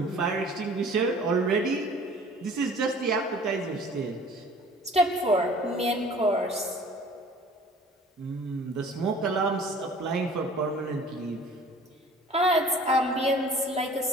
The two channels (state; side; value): normal; both; correlation 0.48